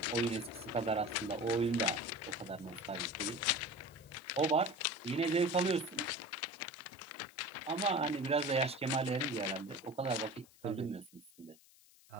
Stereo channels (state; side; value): noise; left; hiss, 26 dB below the sound